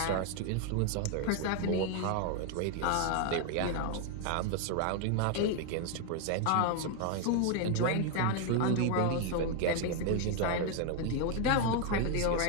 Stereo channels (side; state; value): both; different; correlation 0.00